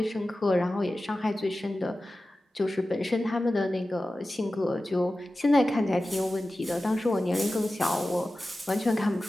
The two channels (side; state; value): both; normal; correlation 0.95